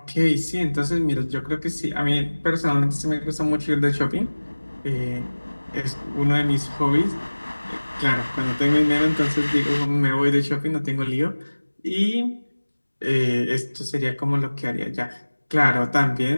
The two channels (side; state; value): both; inverted; correlation -1.00